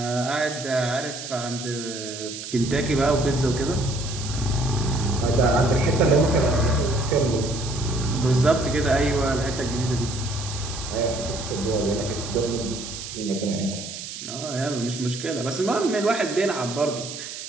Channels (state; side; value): noise; right; hiss, 9 dB below the sound